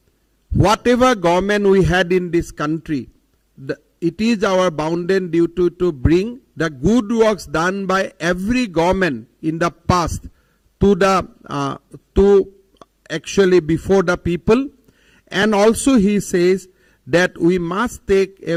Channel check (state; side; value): identical; both; correlation 1.00